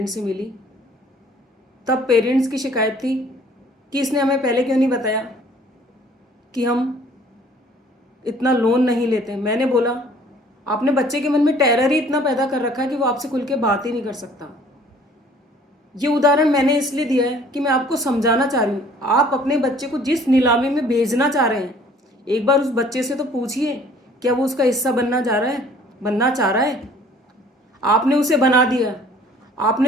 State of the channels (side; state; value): both; normal; correlation 0.54